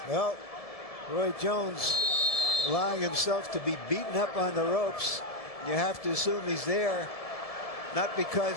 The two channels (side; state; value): right; late; 1.7 ms